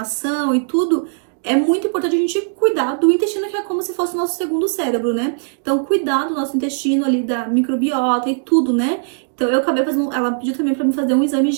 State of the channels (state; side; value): silent; left; digital silence